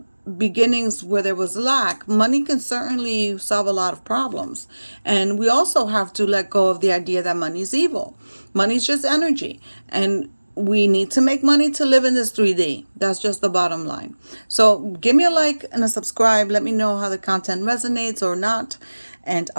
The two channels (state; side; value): inverted; both; correlation -1.00